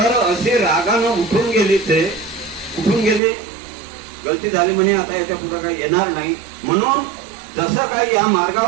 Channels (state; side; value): drops out; left; at 3.2 s